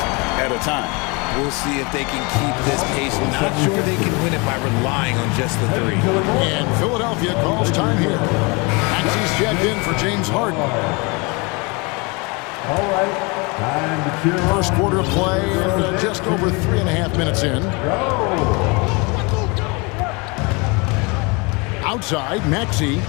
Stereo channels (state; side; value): quieter; right; 28.7 dB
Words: at a time. We'll see if they can keep this pace. Not sure they can win it by relying on just the 3. And Philadelphia calls time here. Maxi's checked in for James Harden. All right, time to cheer on. First quarter of play and just over 3.5 minutes in. Outside, Maxi.